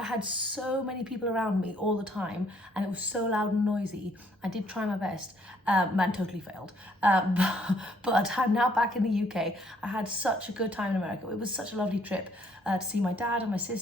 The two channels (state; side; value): normal; both; correlation 0.66